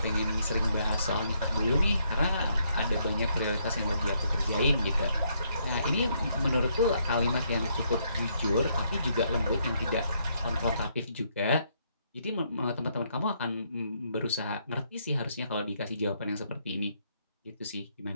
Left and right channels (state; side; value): inverted; both; correlation -0.73